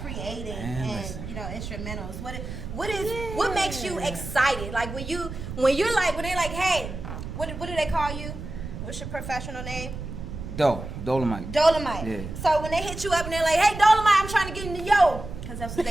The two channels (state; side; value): noise; right; rumble, 9 dB below the sound